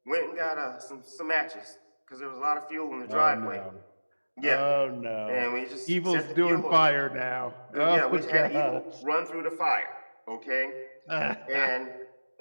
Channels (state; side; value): inverted; both; correlation -1.00